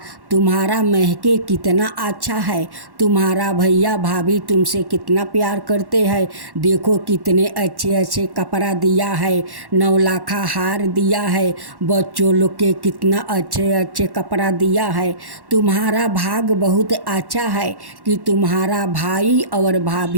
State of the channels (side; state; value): left; late; 1.1 ms